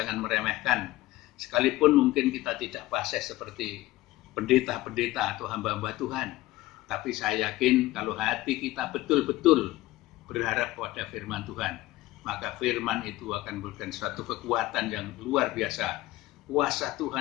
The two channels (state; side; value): quieter; right; 17.7 dB